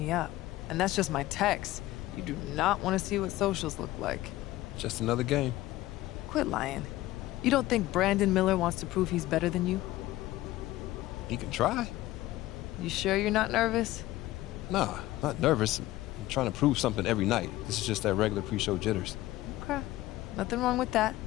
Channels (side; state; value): right; quieter; 16.6 dB